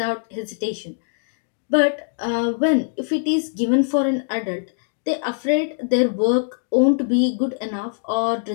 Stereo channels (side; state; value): right; silent; digital silence